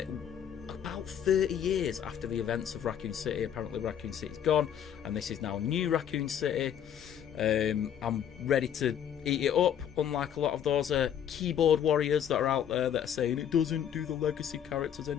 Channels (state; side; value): quieter; right; 9.3 dB